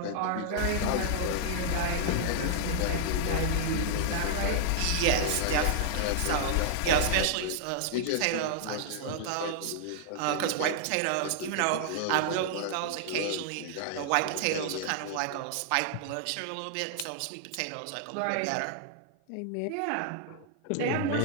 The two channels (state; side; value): different; both; correlation -0.01